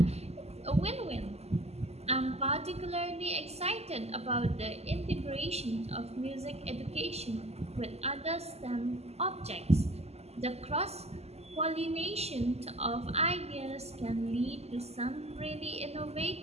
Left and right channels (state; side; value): late; left; 0.30 ms